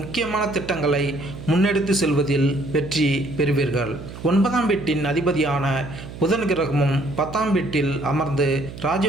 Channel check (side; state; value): right; noise; hum, 13 dB below the sound